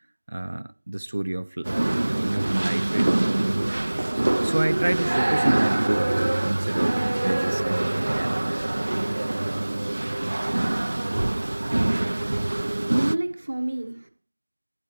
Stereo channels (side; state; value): both; inverted; correlation -1.00